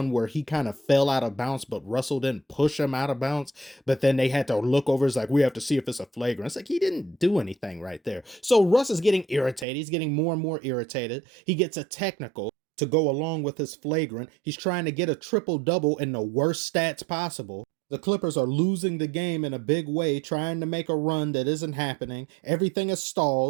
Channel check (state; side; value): drops out; left; at 9.7 s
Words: where he kind of fell out of bounds, but Russell didn't push him out of bounds. But then they had to look over. It's like, we have to see if it's a flagrant. It's like, he didn't do anything right there. So Russ is getting irritated. He's getting more and more irritated. He gets a technical to go along with his flagrant. He's trying to get a triple-double in the worst stats possible. The Clippers are losing the game in a big way, trying to make a run that isn't happening. Everything is